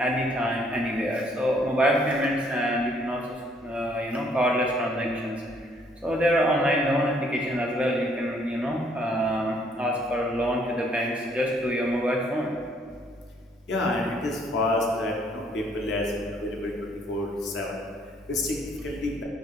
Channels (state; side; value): normal; both; correlation 0.65